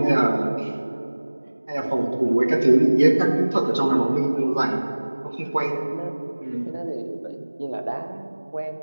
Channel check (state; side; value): inverted; both; correlation -1.00